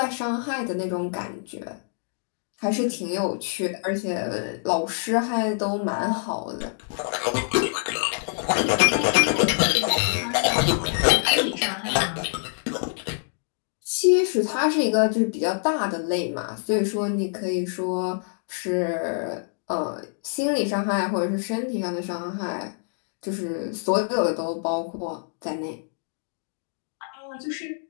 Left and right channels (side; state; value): right; silent; digital silence